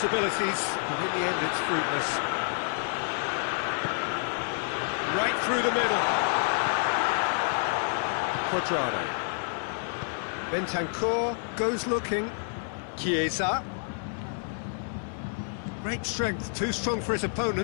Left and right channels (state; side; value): silent; right; 58 dB below the other